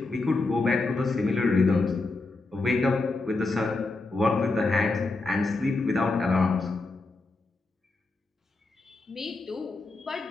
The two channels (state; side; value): quieter; right; 3.4 dB